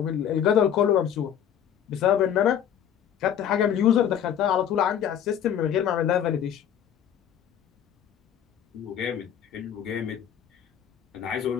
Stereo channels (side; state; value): right; quieter; 9.5 dB